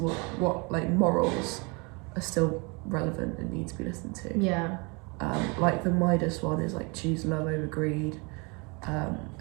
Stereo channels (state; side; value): quieter; left; 30.4 dB